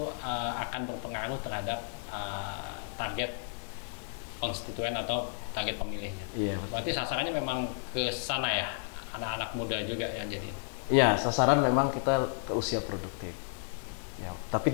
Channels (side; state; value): right; silent; digital silence